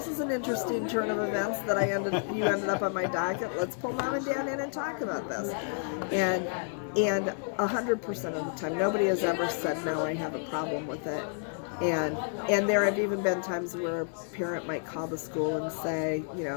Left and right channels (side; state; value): right; silent; 58 dB below the other